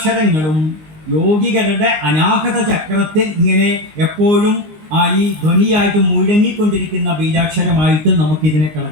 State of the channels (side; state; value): left; late; 19 ms